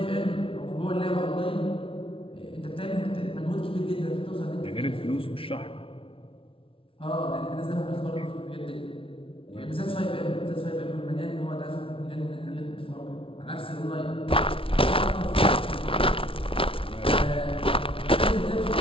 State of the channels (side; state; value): right; late; 0.26 ms